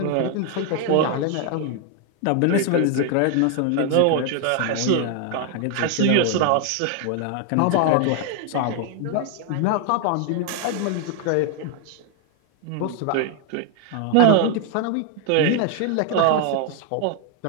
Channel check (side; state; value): both; different; correlation 0.00